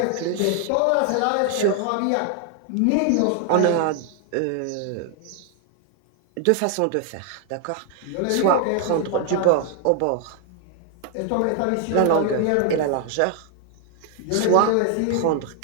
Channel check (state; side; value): different; both; correlation 0.00